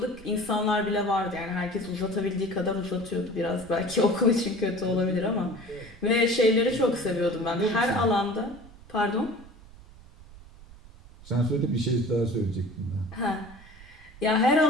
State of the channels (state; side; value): noise; right; rumble, 20 dB below the sound